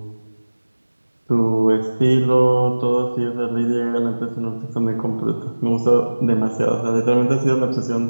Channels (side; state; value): both; inverted; correlation -1.00